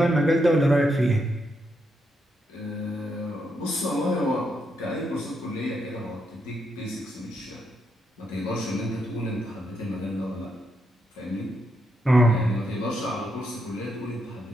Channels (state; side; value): normal; both; correlation 0.80